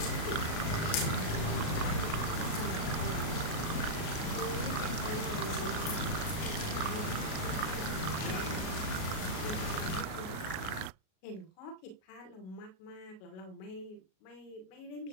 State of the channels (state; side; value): late; right; 38 ms